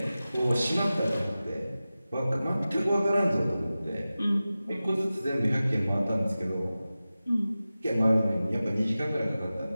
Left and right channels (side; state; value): both; inverted; correlation -0.95